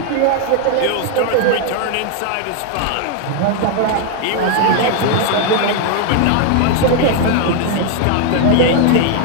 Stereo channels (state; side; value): different; both; correlation 0.00